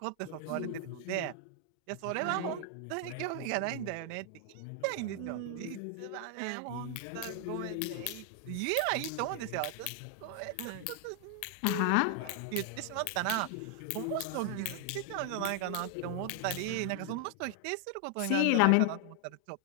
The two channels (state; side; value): different; both; correlation 0.00